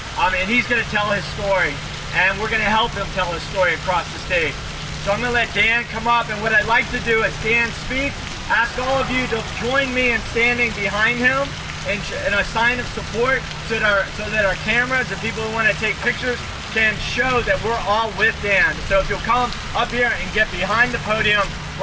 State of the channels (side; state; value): both; identical; correlation 1.00